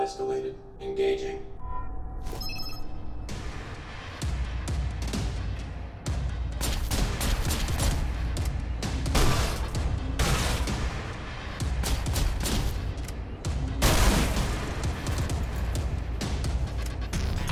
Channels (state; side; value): identical; both; correlation 1.00